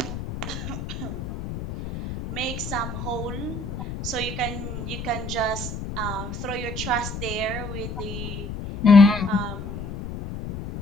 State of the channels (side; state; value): left; noise; rumble, 7 dB below the sound